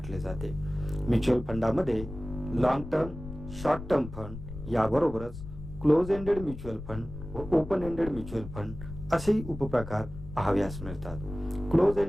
जाते. म्युच्युअल फंडामध्ये long term, short term fund याबरोबरच क्लोज एंडेड म्युच्युअल फंड व ओपन एंडेड म्युच्युअल फंड असेही उपप्रकार पाहाव्यास मिळतात. क्लोज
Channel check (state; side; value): noise; left; rumble, 11 dB below the sound